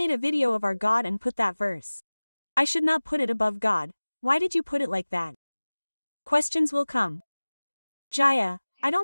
a video of our God and put that verse. I should not put it above God. Why did you put it like that? Questions will come. Jaya, I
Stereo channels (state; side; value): inverted; both; correlation -1.00